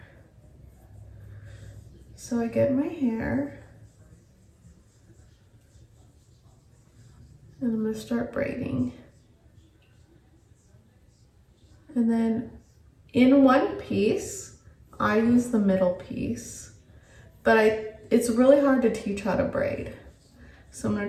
So I get my hair and I'm gonna start braiding. And then in one piece, I use the middle piece, but it's really hard to teach how to braid. So I'm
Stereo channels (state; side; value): identical; both; correlation 1.00